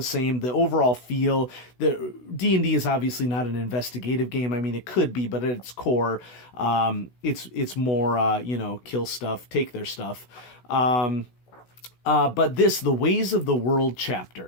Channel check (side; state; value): right; late; 16 ms